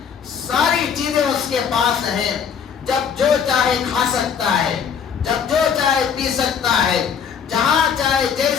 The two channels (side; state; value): right; quieter; 7.2 dB